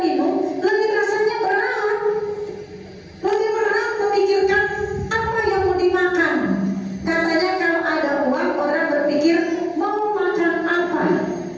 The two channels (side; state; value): both; identical; correlation 1.00